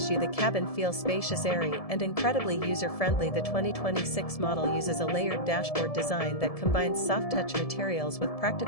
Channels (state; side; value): late; right; 1.7 ms